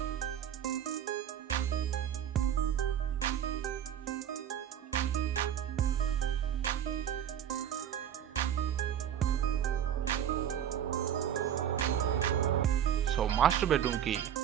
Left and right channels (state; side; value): quieter; left; 9.8 dB